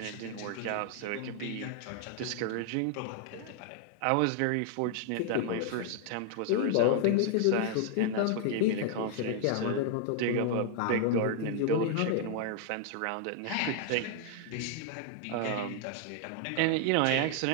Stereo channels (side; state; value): both; different; correlation 0.00